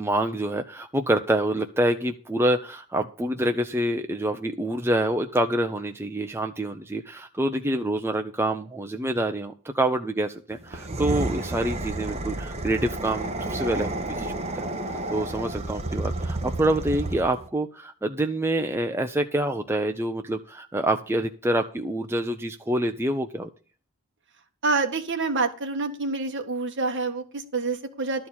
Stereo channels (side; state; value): both; normal; correlation 0.57